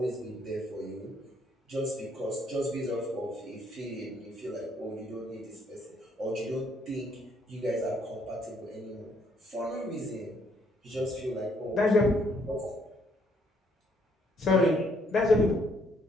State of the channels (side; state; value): both; normal; correlation 0.69